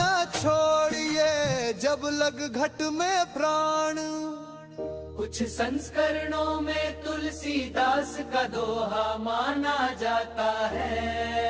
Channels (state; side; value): identical; both; correlation 1.00